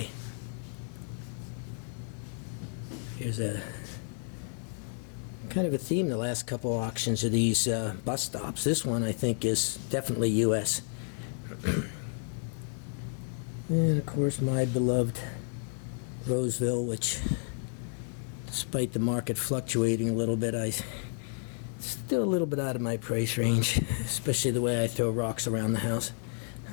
Here's a kind of a theme the last couple auctions of these bus stops. This one I think is definitely U.S. And of course my beloved Roseville, which despite the market fluctuating a little bit, still a little bit out of my price range, especially the way I throw rocks around the house.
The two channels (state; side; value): silent; right; 57 dB below the other